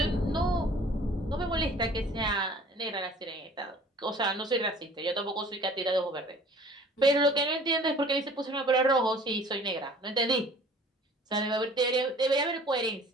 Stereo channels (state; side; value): normal; both; correlation 0.50